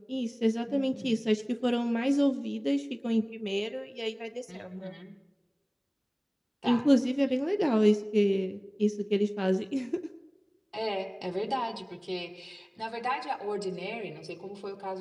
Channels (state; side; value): identical; both; correlation 1.00